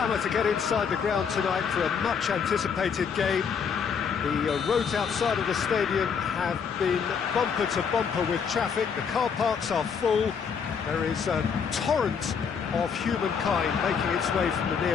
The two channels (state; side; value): quieter; right; 6.5 dB